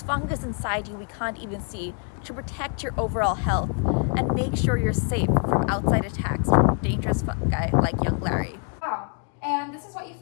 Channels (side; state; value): right; quieter; 38.9 dB